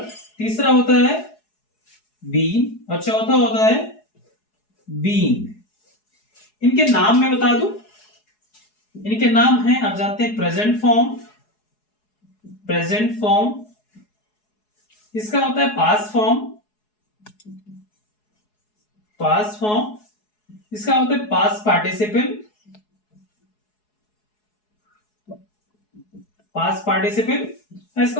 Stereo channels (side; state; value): right; late; 4.7 ms